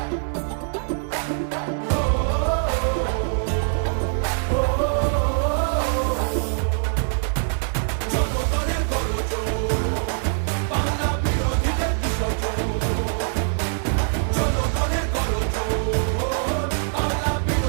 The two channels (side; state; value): left; silent; digital silence